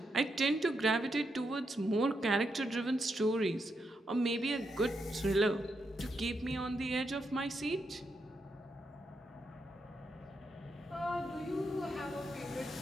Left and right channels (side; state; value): both; normal; correlation 0.82